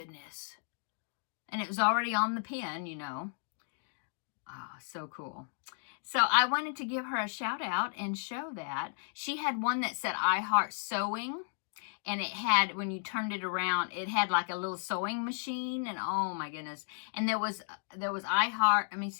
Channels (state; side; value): silent; right; digital silence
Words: And it was already on the pin, you know. Oh, so cool. So I wanted to give her a shout out and show that. She had one that said I Heart Sewing. And it had, when you turned it around, it had like a little sewing machine. And oh my goodness. And there was I Heart, let me